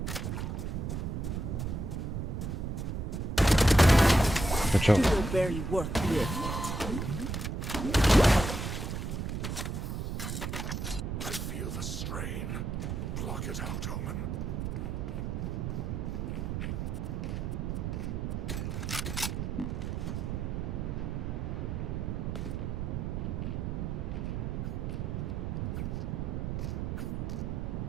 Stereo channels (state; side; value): noise; right; rumble, 2 dB below the sound